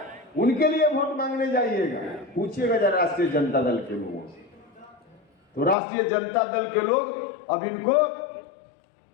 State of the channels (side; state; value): right; drops out; at 5.8 s